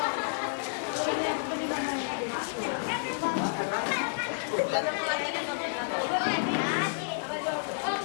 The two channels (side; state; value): right; silent; 58 dB below the other